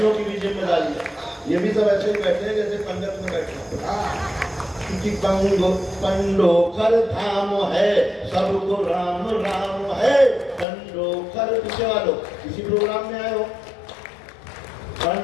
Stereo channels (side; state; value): right; drops out; at 10.7 s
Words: की भी जिम्मेदारी है। ये भी सब ऐसे ही बैठे हैं जैसे पंडित में बैठे हैं कि पंडोखर धाम है, सबको राम राम है। पंडोखर पीछे वालों किसी प्रोग्राम में आए हो?